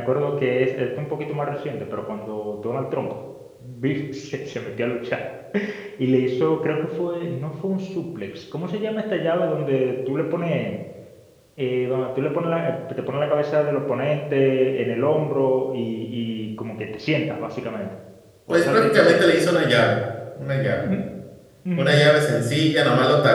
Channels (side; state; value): both; identical; correlation 1.00